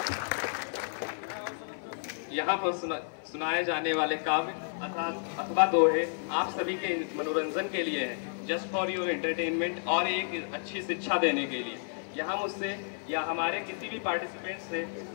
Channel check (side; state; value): right; silent; 57 dB below the other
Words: यहाँ पर सुनाए जाने वाले काव्य अथवा दोहे आप सभी के मनोरंजन के लिए है, जस्ट फॉर योर एंटरटेनमेंट और एक अच्छी शिक्षा देने के लिए। यहाँ मुझसे या हमारे किसी भी पार्टिसिपेंट से